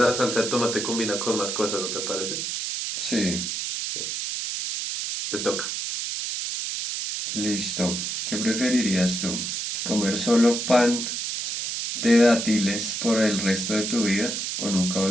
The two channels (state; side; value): noise; right; hiss, 3 dB below the sound